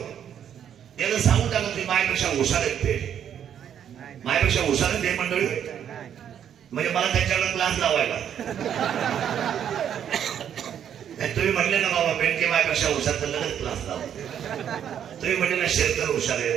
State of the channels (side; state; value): left; quieter; 9.2 dB